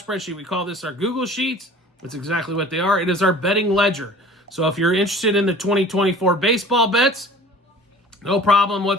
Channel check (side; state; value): both; normal; correlation 0.46